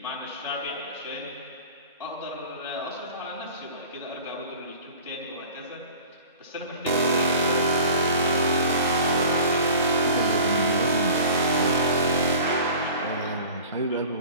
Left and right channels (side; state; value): both; inverted; correlation -0.42